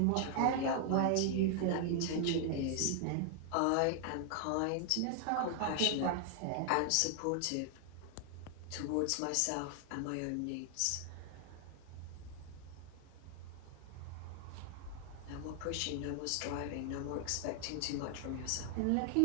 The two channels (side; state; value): both; different; correlation 0.00